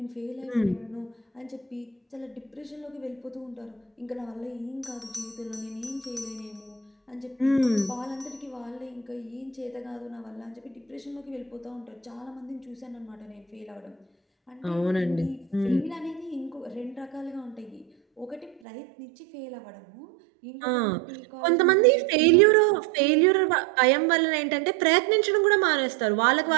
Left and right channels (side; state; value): left; drops out; at 18.6 s